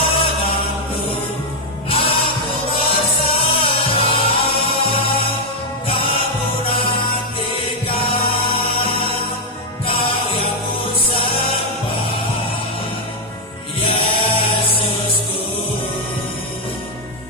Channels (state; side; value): normal; both; correlation 0.01